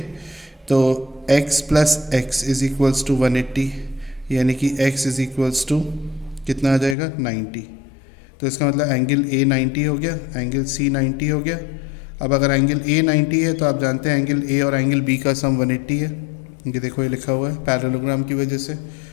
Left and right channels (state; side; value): drops out; right; at 7.0 s